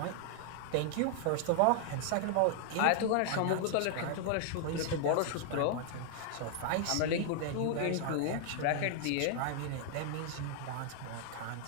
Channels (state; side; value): different; both; correlation 0.00